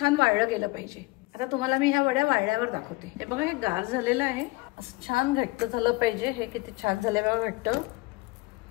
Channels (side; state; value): right; quieter; 22.9 dB